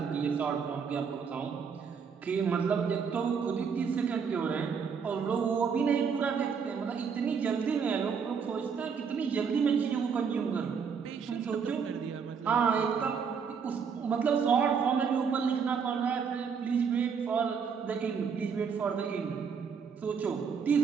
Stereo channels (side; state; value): left; quieter; 6.3 dB